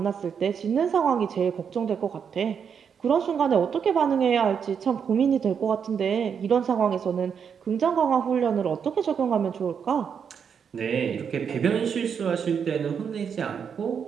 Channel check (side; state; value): left; quieter; 7.1 dB